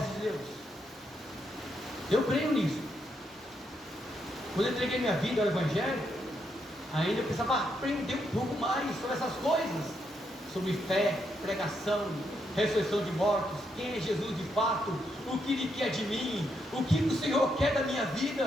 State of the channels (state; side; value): normal; both; correlation 0.79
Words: de Deus. Eu creio nisso. Quando eu entreguei minha vida ao Evangelho, ainda eu precisava aprender um pouco mais sobre essas coisas, sobre fé, pregação, ressurreição de mortos, quem é Jesus de fato, o que Ele quer de mim, o que o Senhor quer da minha